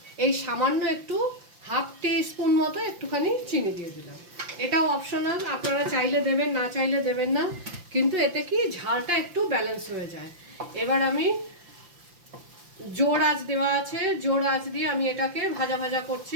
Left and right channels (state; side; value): late; left; 5.8 ms